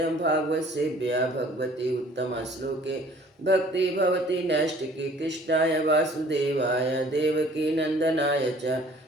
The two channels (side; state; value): both; normal; correlation 0.53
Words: भागवतसेव्या भगवती उत्तमश्लोके भक्ति भवति नैष्टिकी कृष्णाय वासुदेवाय देवकी नन्दनाय च